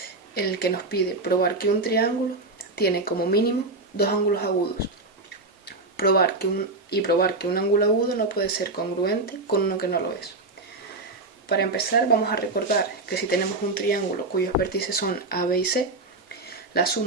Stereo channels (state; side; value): quieter; left; 3.2 dB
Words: en el que nos pide probar que un triángulo tiene como mínimo dos ángulos agudos. Probar que un ángulo agudo no puede ser congruente con uno que no lo es. Para empezar, vamos a recordar que si tenemos un triángulo cuyos vértices son A, B y C, la